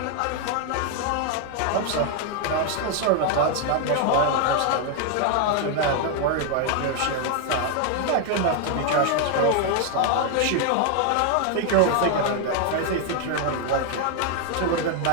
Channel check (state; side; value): different; both; correlation 0.00